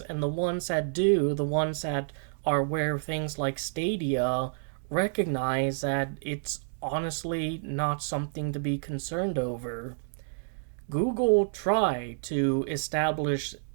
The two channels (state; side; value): silent; left; digital silence